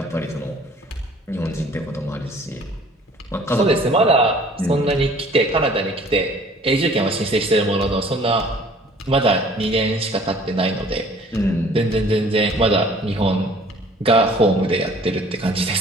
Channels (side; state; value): both; normal; correlation 0.53